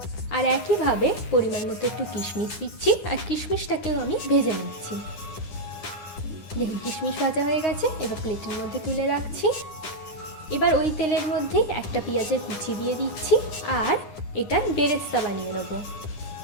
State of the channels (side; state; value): right; late; 9.8 ms